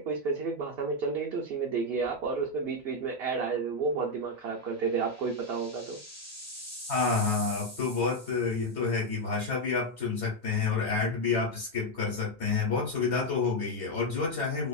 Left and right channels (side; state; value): both; normal; correlation 0.04